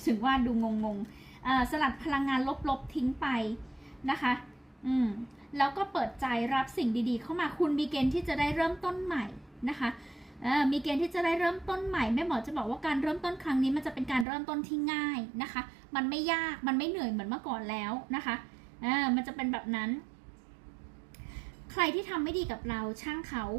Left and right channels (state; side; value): drops out; left; at 14.2 s